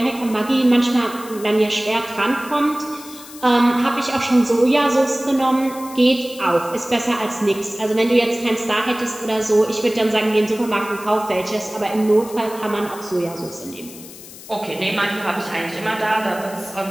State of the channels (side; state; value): left; noise; hiss, 16 dB below the sound